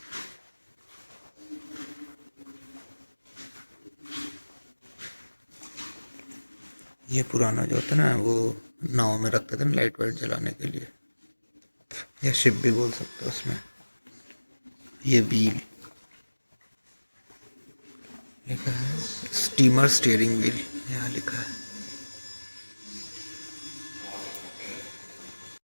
ये पुराना जो होता है ना, वो नाव में रखते थे ना लाइट वाइट जलाने के लिए, या शिप भी बोल सकते हो उसमें। ये व्हील लिखा है, स्टीमर स्टीयरिंग व्हील यहाँ लिखा है।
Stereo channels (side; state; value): both; inverted; correlation -1.00